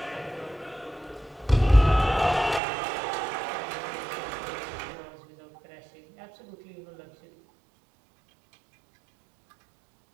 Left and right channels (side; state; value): left; drops out; at 2.6 s